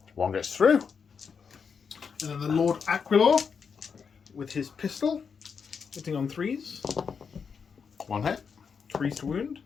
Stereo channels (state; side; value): quieter; right; 6.1 dB